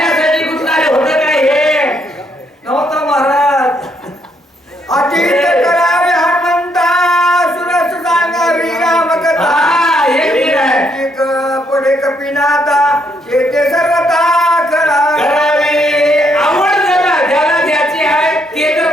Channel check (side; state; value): both; normal; correlation 0.73